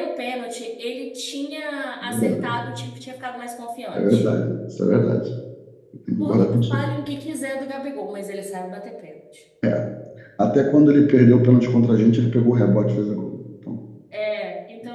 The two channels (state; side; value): identical; both; correlation 1.00